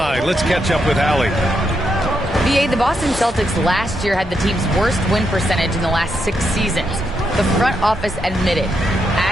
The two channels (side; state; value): both; normal; correlation 0.81